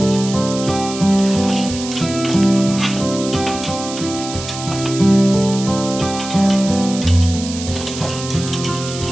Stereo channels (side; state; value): right; noise; hiss, 10 dB below the sound